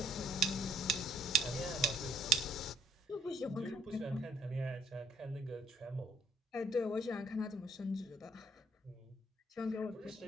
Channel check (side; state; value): both; normal; correlation 0.66